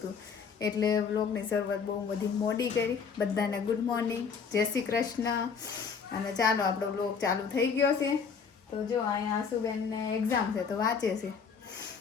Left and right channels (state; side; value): quieter; right; 6.0 dB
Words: એટલે બ્લોગની શરૂઆત બહુ બધી મોડી કરી. બધાને ગુડ મોર્નિંગ, જય શ્રી કૃષ્ણ. અને ચાલો આપણો બ્લોગ ચાલુ થઈ ગયો છે. તો જો અહીંયા આસુબેનને એક્ઝામ છે તો વાંચે છે,